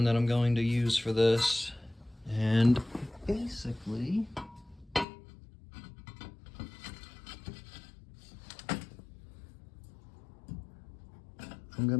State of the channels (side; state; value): right; drops out; at 5.1 s